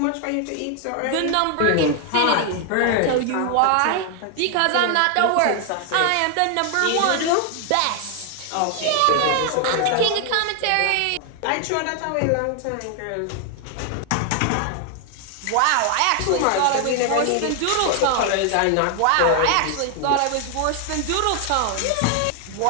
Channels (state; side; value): different; both; correlation 0.00